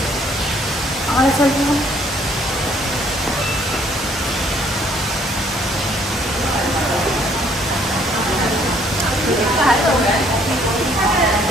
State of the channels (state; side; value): normal; both; correlation 0.63